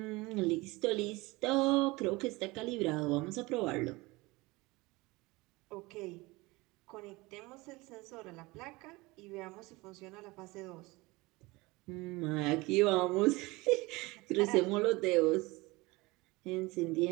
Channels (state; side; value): quieter; left; 22.7 dB